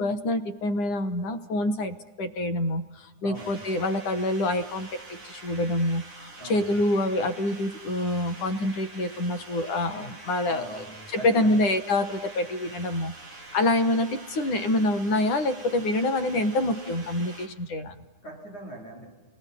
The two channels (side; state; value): right; late; 9.8 ms